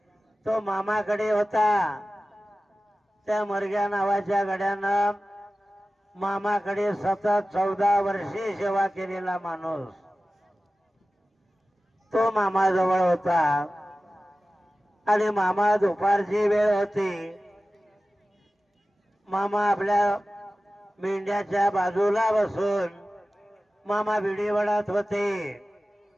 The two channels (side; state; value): both; normal; correlation 0.95